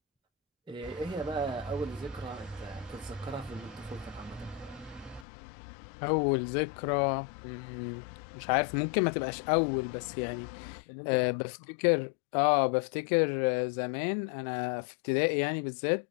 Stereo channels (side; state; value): right; drops out; at 5.2 s